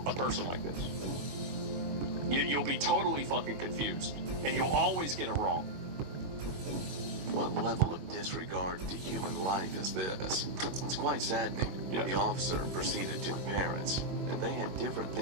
a person like this. You'll be totally fucking confused, and you'll always get it wrong. What level of disregard to human life is this? It's quite saddening. Yeah. The officer proceeded to the parents, and they had different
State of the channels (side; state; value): left; late; 21 ms